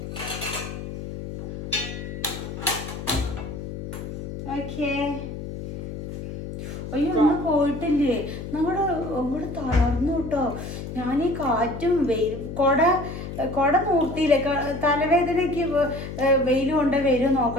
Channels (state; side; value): noise; left; hum, 8 dB below the sound